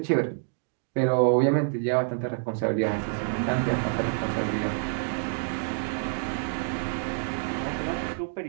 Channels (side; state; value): left; silent; digital silence